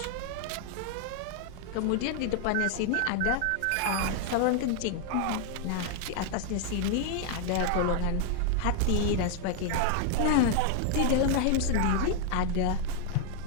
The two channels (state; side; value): different; both; correlation 0.00